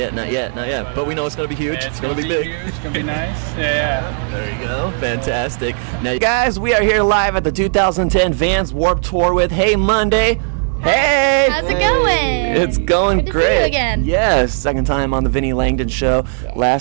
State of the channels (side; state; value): left; silent; digital silence